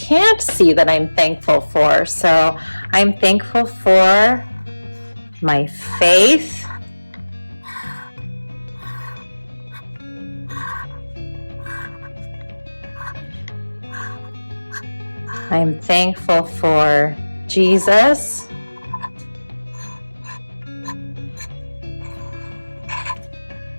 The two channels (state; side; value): inverted; both; correlation -1.00